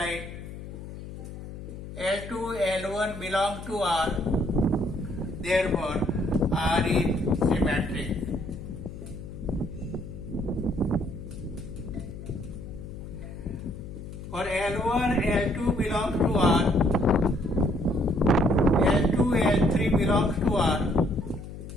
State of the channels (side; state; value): left; noise; hum, 11 dB below the sound